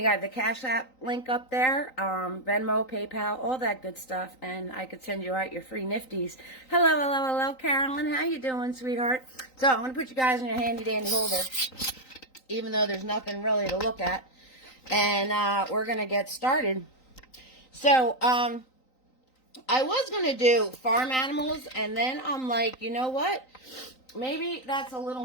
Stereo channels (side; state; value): right; late; 3.9 ms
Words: I have the Cash App link up there. Venmo, PayPal, all that good stuff. And I could send you out your free nifties. Hello, Carolyn. How you doing, sweetheart? So I'm going to put you guys in your handy-dandy holder, even though there's nothing really to look at. And we're going to get started. So, I was going to do farm animals, and then I'm like, you know what? Maybe that's a little